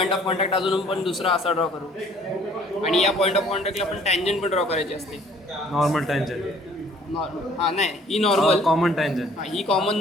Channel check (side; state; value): both; normal; correlation 0.57